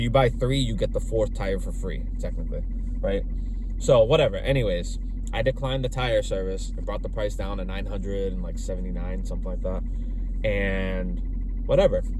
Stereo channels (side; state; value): both; identical; correlation 1.00